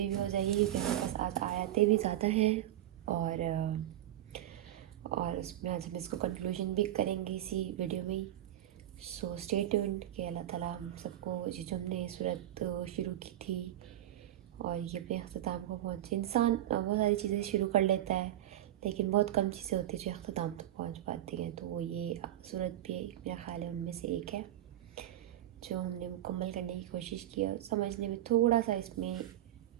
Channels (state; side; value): quieter; left; 13.1 dB